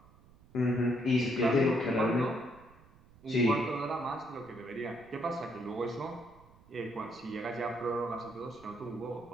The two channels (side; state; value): right; noise; rumble, 25 dB below the sound